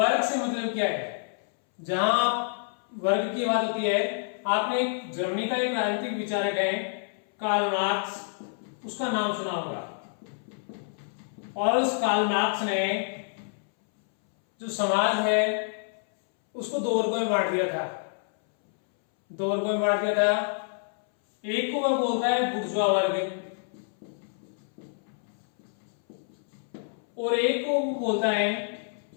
से मतलब क्या है, जहां वर्ग की बात होती है, आपने एक जर्मनी का एक राजनीतिक विचारक है कार्ल मार्क्स, उसका नाम सुना होगा, और उस कार्ल मार्क्स ने जो समाज है उसको 2 वर्गों में बांट दिया था, 2 वर्गों में बांट दिया था। एक को वह बोलता है बुर्जुआ वर्ग, और एक को बोलता है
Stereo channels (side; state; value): right; silent; 59 dB below the other